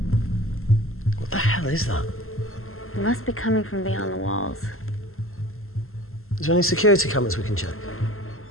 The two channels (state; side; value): late; right; 0.62 ms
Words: What the hell is that? It must be coming from beyond the walls. Is there any security cameras we can check?